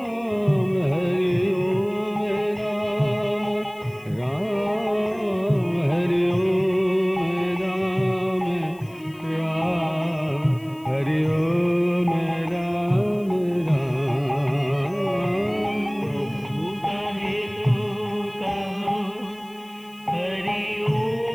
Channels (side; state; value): left; noise; hiss, 26 dB below the sound